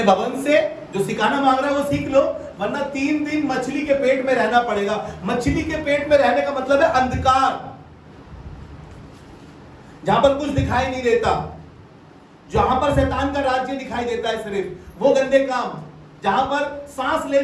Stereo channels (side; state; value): both; identical; correlation 1.00